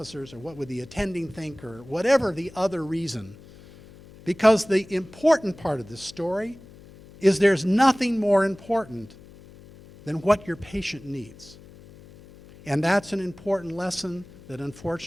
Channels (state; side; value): noise; left; hum, 21 dB below the sound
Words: or what would the attending think, or whatever the other reason. Because the important part of this story is there's nothing more important than what your patient needs. And that's an important lesson that